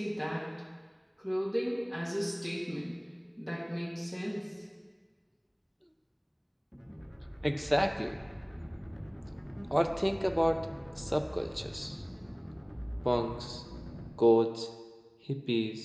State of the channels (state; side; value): identical; both; correlation 1.00